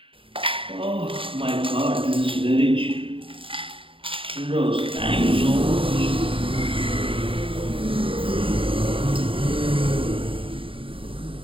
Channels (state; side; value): late; left; 0.26 ms